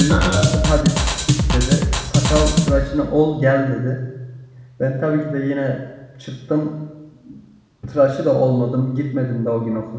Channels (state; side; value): identical; both; correlation 1.00